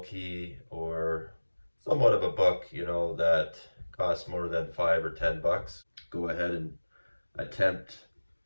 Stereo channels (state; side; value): inverted; both; correlation -1.00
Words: key or somewhat of a book, you know, that costs more than $5 or $10. Go ahead and attempt